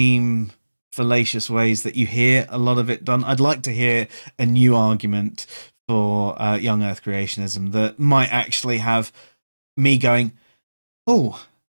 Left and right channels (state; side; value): inverted; both; correlation -1.00